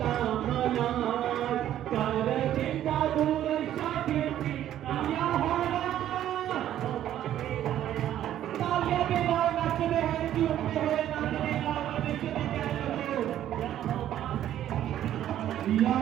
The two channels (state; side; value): quieter; left; 11.7 dB